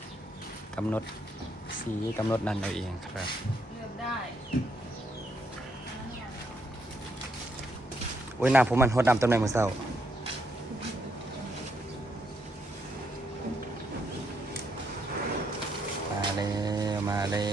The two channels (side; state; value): both; normal; correlation 0.75